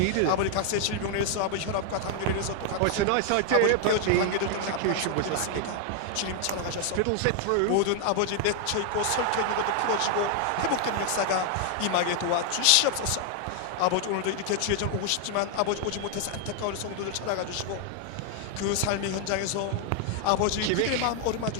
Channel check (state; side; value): different; both; correlation 0.00